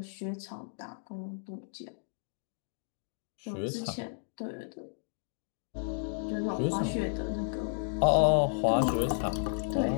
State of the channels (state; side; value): silent; right; digital silence